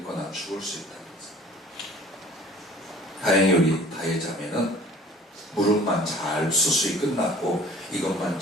죽을 수 있다는 거죠. 다행히 우리 다혜자매는 무릎만 잘 수술이 끝났고 이것만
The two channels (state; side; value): normal; both; correlation 0.49